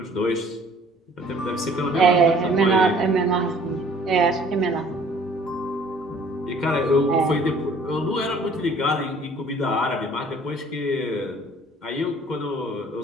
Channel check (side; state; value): both; normal; correlation 0.54